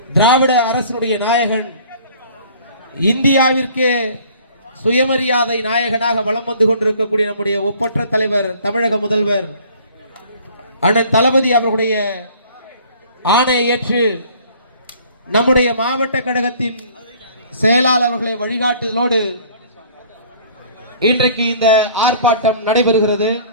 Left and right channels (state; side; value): inverted; both; correlation -0.52